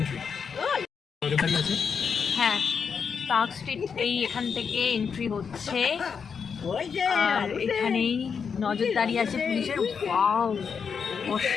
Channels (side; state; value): right; quieter; 6.3 dB